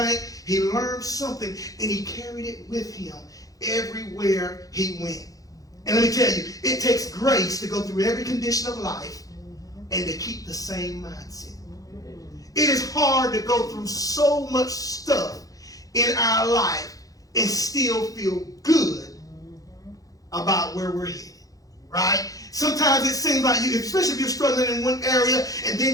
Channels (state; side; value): late; right; 0.17 ms